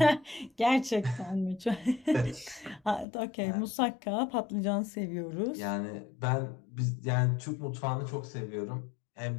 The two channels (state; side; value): drops out; right; at 3.1 s